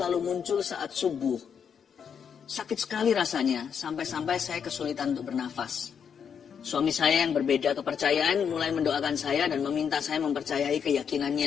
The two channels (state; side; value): quieter; right; 7.3 dB